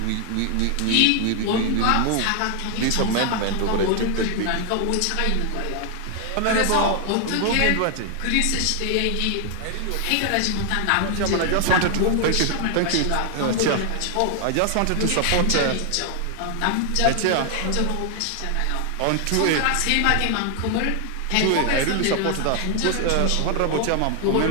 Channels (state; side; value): different; both; correlation 0.00